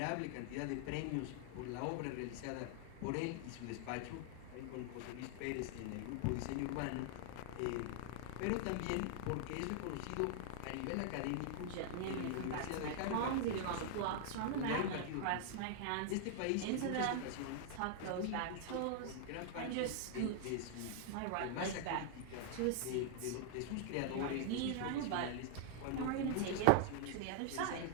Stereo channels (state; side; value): different; both; correlation 0.00